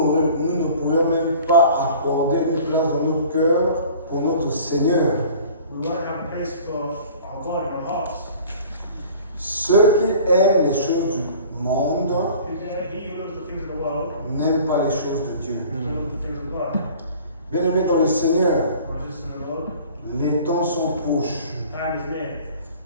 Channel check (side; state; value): both; inverted; correlation -0.46